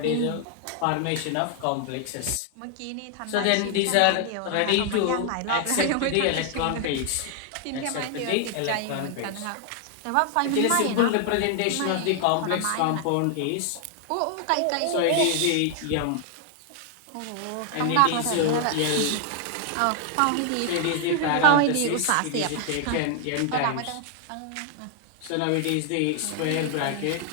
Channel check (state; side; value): different; both; correlation 0.00